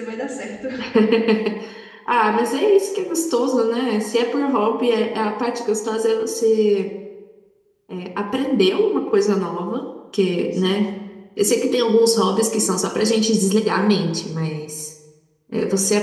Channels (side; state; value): both; identical; correlation 1.00